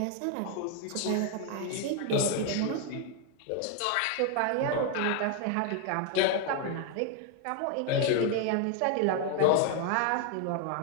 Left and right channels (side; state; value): both; different; correlation 0.00